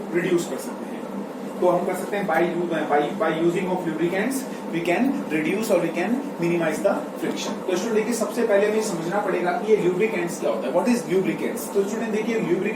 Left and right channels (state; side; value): identical; both; correlation 1.00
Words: रिड्यूस कर सकते हैं। तो हम कर सकते हैं by using of lubricants we can reduce और we can minimise the friction. तो स्टूडेंट देखिए सबसे पहले हमें समझना पड़ेगा कि ये ल्यूब्रिकेंट्स क्या होता है, व्हाट इज ल्यूब्रिकेंट्स। तो स्टूडेंट देखिए